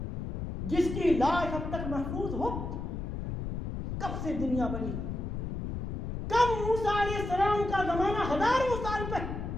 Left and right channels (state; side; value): noise; left; rumble, 4 dB below the sound